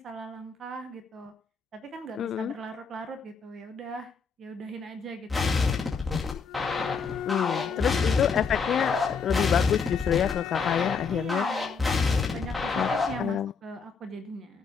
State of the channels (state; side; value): quieter; right; 5.4 dB